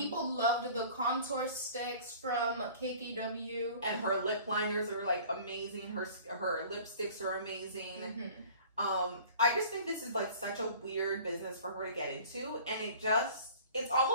loved the contour sticks from KKW. And her lip liners are like amazing. Her lipsticks are amazing. Mm-hmm. I just think this is like such a weird business for her to get into. And it's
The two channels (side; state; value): both; inverted; correlation -0.46